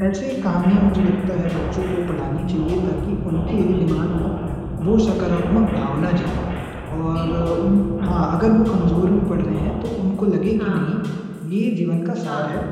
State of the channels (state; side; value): identical; both; correlation 1.00